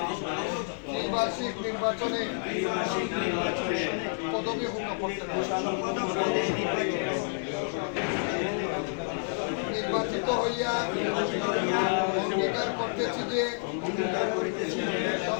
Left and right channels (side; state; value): right; silent; 58 dB below the other